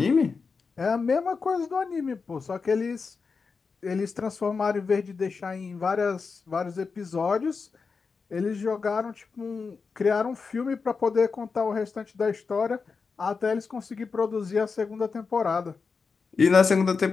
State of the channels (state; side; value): quieter; right; 4.9 dB